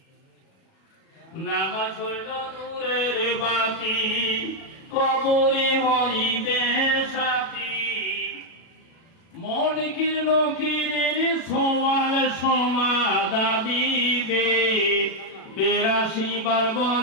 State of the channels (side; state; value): right; late; 37 ms